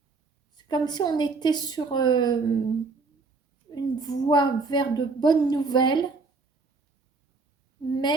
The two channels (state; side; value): quieter; left; 4.1 dB